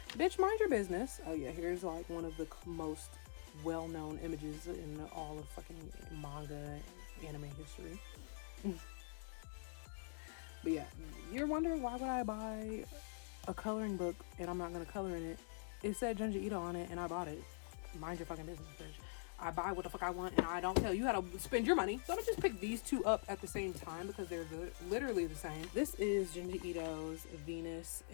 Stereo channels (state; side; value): silent; right; digital silence